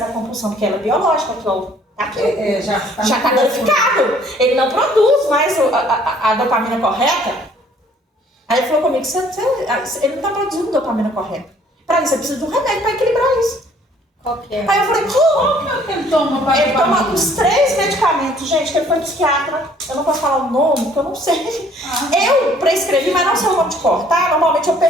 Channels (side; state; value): both; normal; correlation 0.59